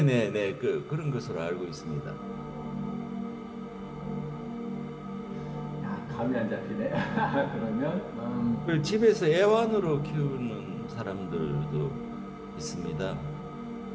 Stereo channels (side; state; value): both; identical; correlation 1.00